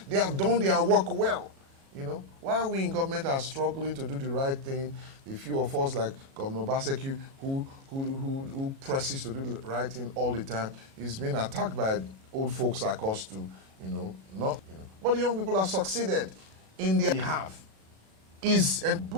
they have done their work well. While we in government are struggling to do the right thing, the few of us like Governor Obaseki who presses to do the right thing all the time, is being attacked by old folks like us too, But the young people have succeeded in their behalf. And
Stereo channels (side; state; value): left; late; 37 ms